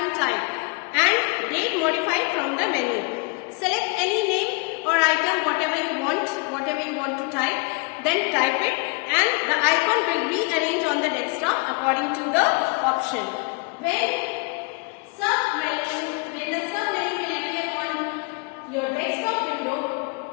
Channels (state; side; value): quieter; right; 29.8 dB